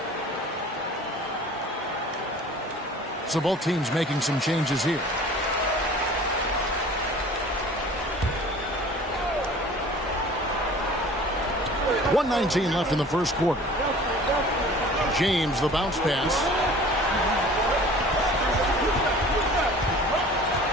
So both teams making some changes here. .119 left in the first quarter. James, the bounce pass.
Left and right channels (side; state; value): both; normal; correlation 0.45